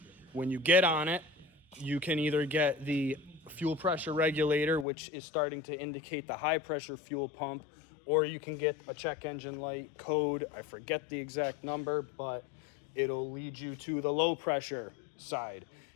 when you get on it, you can either get the fuel pressure regulator, which is starting to indicate the high pressure fuel pump, or you can get a check engine light code. I forget the exact number, but it'll lead you to the low pressure side.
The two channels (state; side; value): drops out; right; at 4.9 s